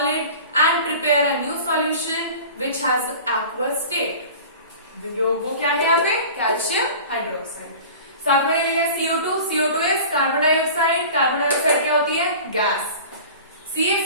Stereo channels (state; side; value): inverted; both; correlation -0.39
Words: and prepare a new solution which has aqueous state. वो क्या है यहाँ पे? Calcium hydroxide. साथ में लिया CO2, CO2 is carbon dioxide, carbon dioxide क्या होती है? Gas.